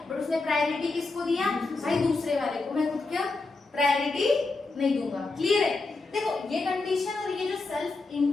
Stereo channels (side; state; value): right; quieter; 3.6 dB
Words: बट उसने प्रायोरिटी किसको दिया, भाई दूसरे वाले को, मैं खुद क्या प्रायोरिटी नहीं दूंगा। क्लियर है? देखो ये कंडीशन और ये जो सेल्फ